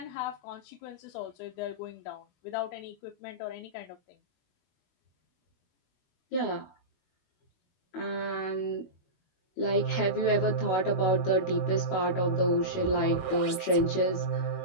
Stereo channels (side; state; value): right; late; 21 ms